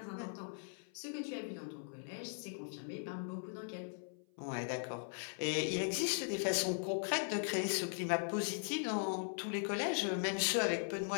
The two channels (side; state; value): right; silent; 51 dB below the other